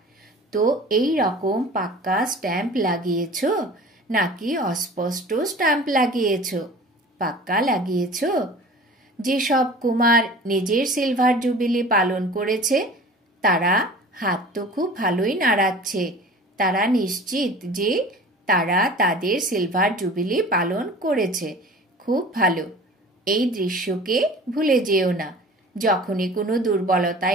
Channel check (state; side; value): normal; both; correlation 0.41